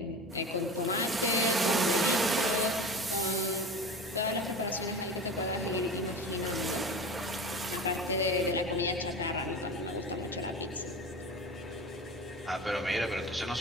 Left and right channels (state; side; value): normal; both; correlation 0.32